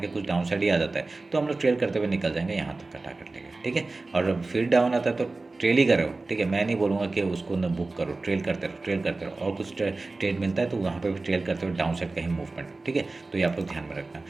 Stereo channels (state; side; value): quieter; left; 3.4 dB